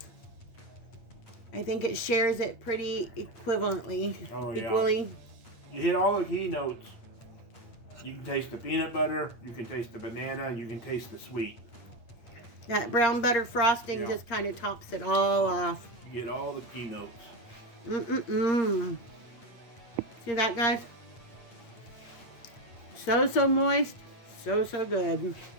I think it shares it pretty equivalently. Oh, yeah. Equally. You hit all the key notes. You can taste the peanut butter, you can taste the banana, you can taste the sweet. That brown butter frosting just kind of tops it all off. You get all the key notes. Mm-mm-mm. See that, guys? So, so moist. So, so good.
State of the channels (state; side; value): late; right; 8.5 ms